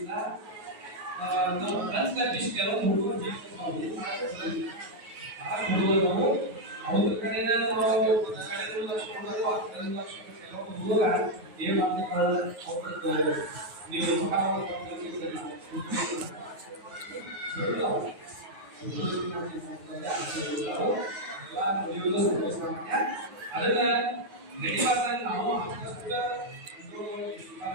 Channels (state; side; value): late; left; 9.4 ms